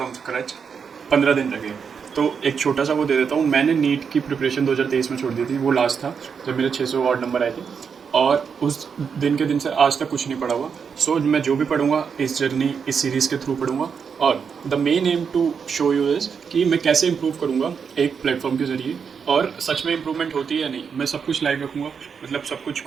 scratch 15 दिन लगे। तो एक छोटा सा वो दे देता हूँ। मैंने नीट की प्रिपरेशन 2023 में छोड़ दी थी, वो लास्ट था जब मेरे 600 और नंबर आए थे, और उस दिन के दिन से आज तक कुछ नहीं पढ़ा हुआ। मैं जो भी पढ़ूंगा इस जर्नी, इस सीरीज़ के थ्रू पढ़ूंगा, और the main aim to show you is कि मैं कैसे इंप्रूव करूंगा एक प्लेटफॉर्म के ज़रिए, और सच में इंप्रूवमेंट होती है या नहीं। मैं सब कुछ लाइव रखूँगा, मतलब सब कुछ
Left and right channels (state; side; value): quieter; left; 6.4 dB